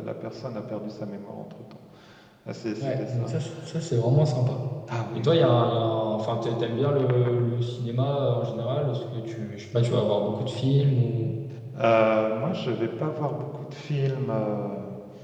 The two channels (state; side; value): identical; both; correlation 1.00